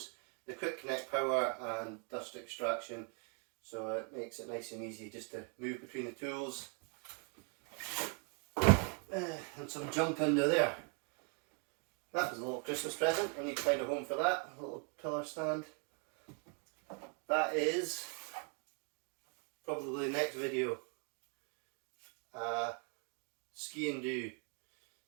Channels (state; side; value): quieter; left; 39.4 dB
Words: the quick connect power and dust extraction, so it makes it nice and easy just to move between the tools. And some junk under there. That was a little Christmas present. I need to find a home for that. A little pillar stand. That is probably the next video. Ski and do.